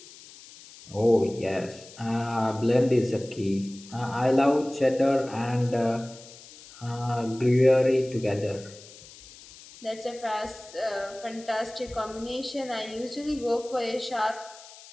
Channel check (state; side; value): noise; left; hiss, 19 dB below the sound